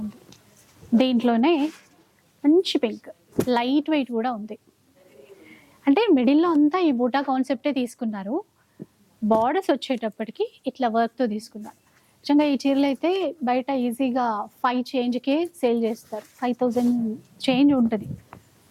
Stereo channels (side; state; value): both; identical; correlation 1.00